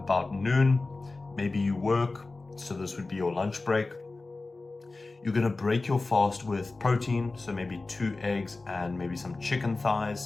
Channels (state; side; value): quieter; right; 3.4 dB